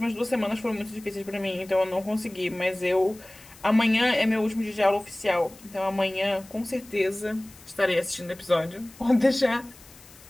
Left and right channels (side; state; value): left; noise; hiss, 23 dB below the sound